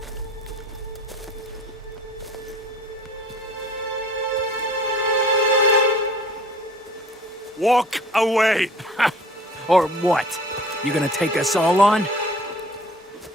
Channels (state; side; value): normal; both; correlation 0.48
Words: Walk away! Or what? You gonna take us all on?